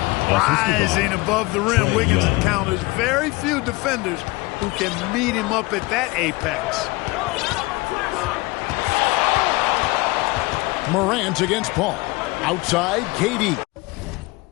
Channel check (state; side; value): quieter; right; 23.2 dB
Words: Rising above the rim, Wiggins encounters very few defenders who can meet him up at that apex. Morant against Paul. Outside, KD.